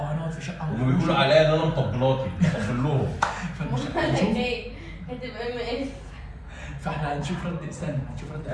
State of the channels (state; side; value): identical; both; correlation 1.00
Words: في شقه. هم بيقولوا عليا ان انا مطبلاتي، بطبل لهم. هتبقى مقرف. فاحنا هنشوف رد، استنى هنشوف رد.